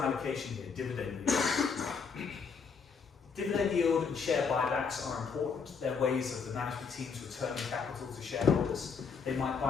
allocation here, dividend yield. Dividend yield and share buybacks are important. They're ways of the management teams returning capital to shareholders. They might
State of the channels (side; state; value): right; quieter; 5.6 dB